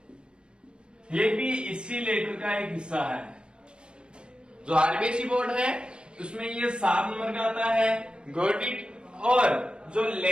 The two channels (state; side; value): late; left; 0.055 ms